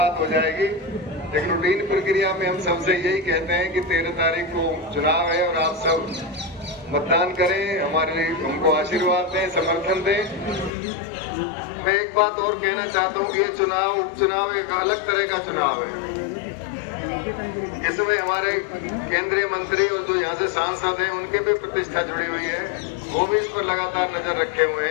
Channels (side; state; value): right; drops out; at 10.7 s